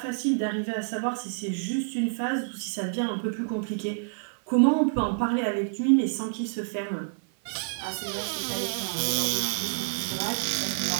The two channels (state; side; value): silent; left; 59 dB below the other